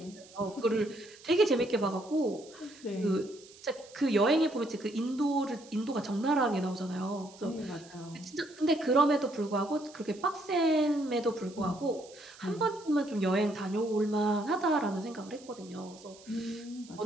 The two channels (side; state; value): right; noise; hiss, 22 dB below the sound